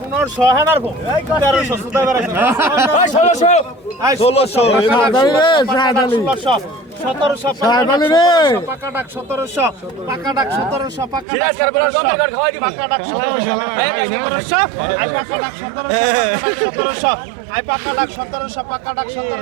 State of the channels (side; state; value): left; drops out; at 11.2 s